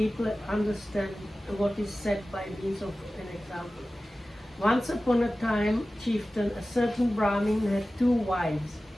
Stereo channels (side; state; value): both; normal; correlation 0.96